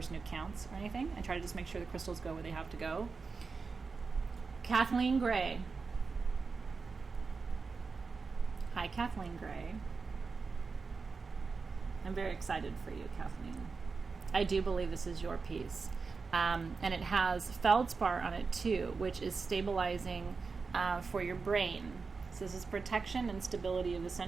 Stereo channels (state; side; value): quieter; left; 4.6 dB